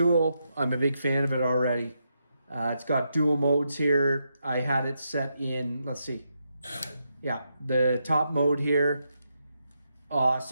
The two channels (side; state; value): both; inverted; correlation -0.82